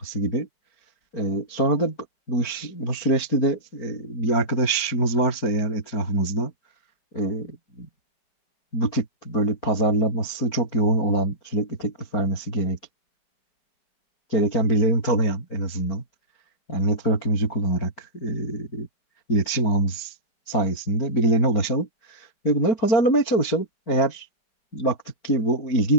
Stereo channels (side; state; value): right; late; 4.5 ms